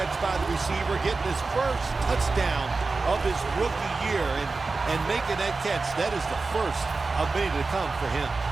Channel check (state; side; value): quieter; left; 3.9 dB